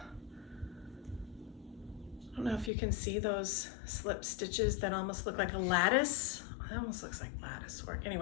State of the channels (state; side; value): drops out; right; at 2.7 s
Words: I don't know if you can see those slip stitches that almost look like a lattice. It almost looks like lattice work.